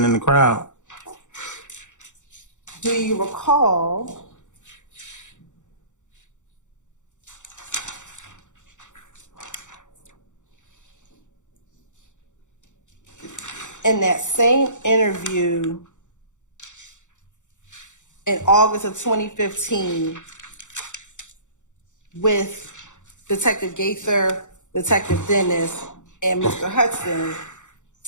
in the crowd. Do you recall in that same interview in August of 2015 with Detective Gaither, Detective Dennis, and Mr. Hudson,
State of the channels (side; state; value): right; late; 0.85 ms